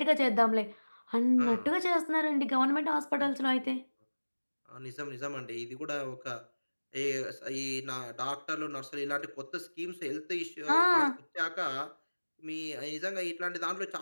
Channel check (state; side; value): inverted; both; correlation -1.00